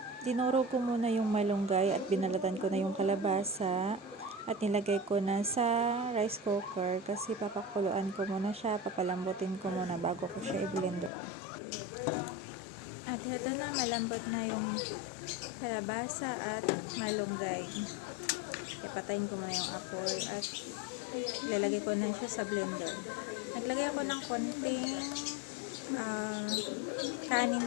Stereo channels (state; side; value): drops out; right; at 11.1 s